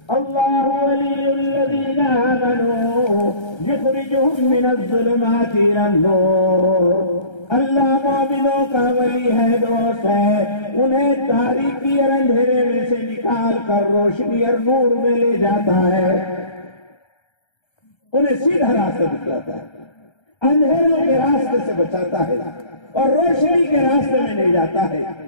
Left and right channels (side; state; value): right; late; 1.3 ms